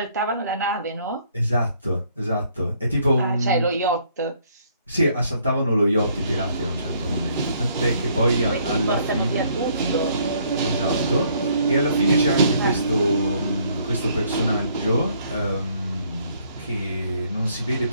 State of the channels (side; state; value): both; inverted; correlation -0.65